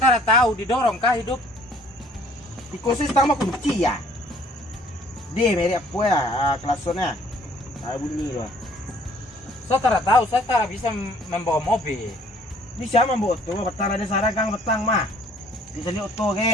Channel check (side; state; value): both; normal; correlation 0.59